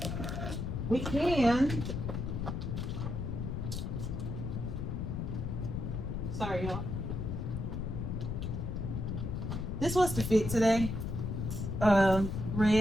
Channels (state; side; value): noise; left; rumble, 3 dB below the sound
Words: We can. Sorry, y'all. This was the fit today.